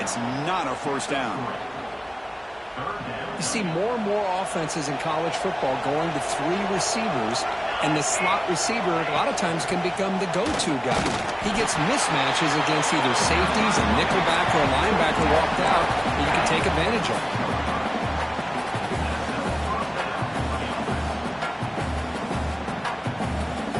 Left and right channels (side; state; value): both; identical; correlation 1.00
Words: not a first down. You see more and more offenses in college football going to 3 receivers, and the slot receiver a lot of times can become the go-to guy. He gets mismatches against either safeties, a nickelback, or a linebacker walked out that you can take advantage of.